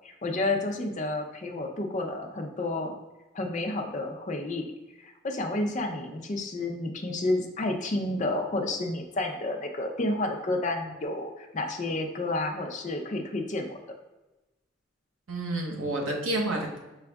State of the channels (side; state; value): both; normal; correlation 0.37